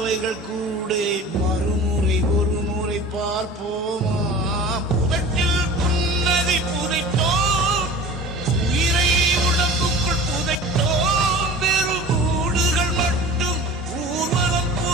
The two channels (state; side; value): normal; both; correlation 0.39